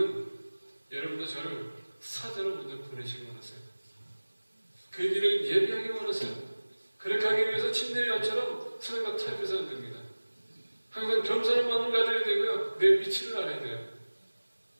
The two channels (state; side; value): inverted; both; correlation -1.00